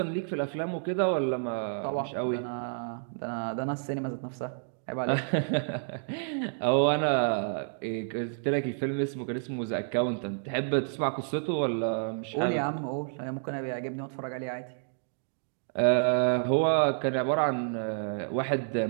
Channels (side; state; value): left; silent; digital silence